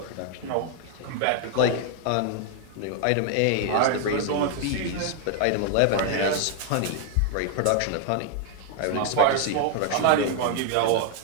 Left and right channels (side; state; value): both; different; correlation 0.00